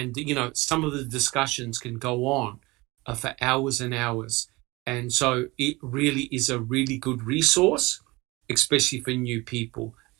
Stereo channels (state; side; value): quieter; left; 22.9 dB